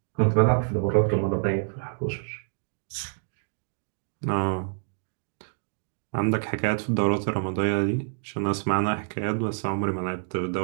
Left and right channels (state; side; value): silent; left; digital silence